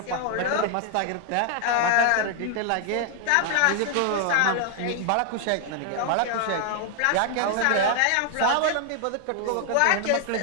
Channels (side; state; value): both; different; correlation 0.00